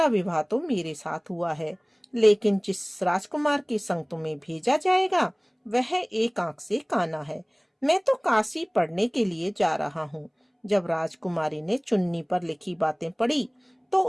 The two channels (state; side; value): identical; both; correlation 1.00